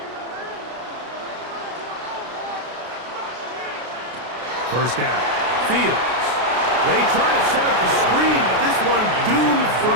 First down. Fields. They try to set up the screen, but this one doomed from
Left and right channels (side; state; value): left; late; 33 ms